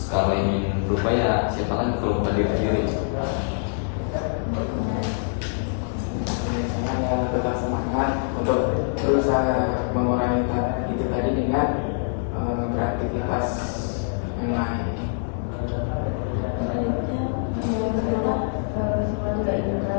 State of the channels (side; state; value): right; silent; 62 dB below the other